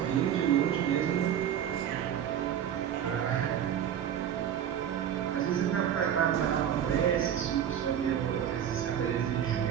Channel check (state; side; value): quieter; left; 9.6 dB